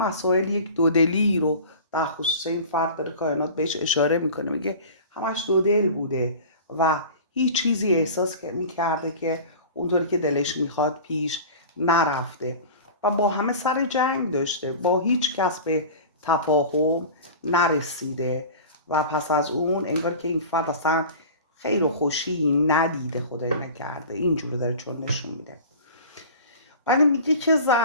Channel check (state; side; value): inverted; both; correlation -0.37